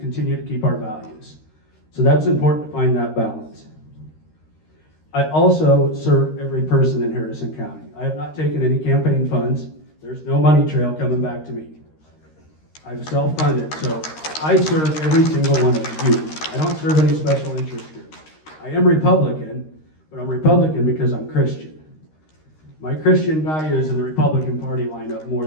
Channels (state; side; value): late; right; 13 ms